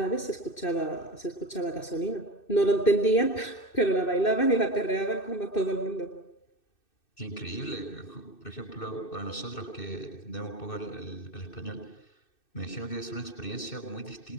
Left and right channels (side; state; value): right; late; 2.6 ms